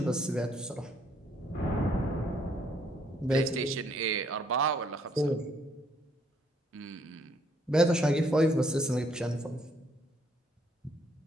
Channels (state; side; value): normal; both; correlation 0.68